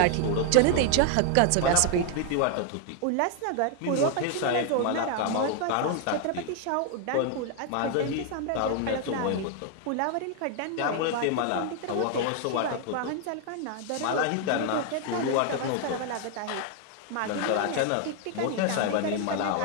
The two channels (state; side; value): different; both; correlation 0.00